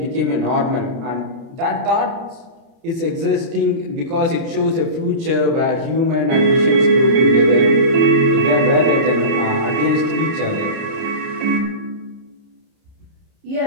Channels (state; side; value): late; left; 30 ms